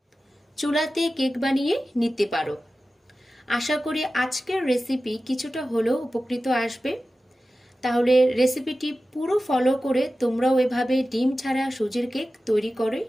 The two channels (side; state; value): both; normal; correlation 0.94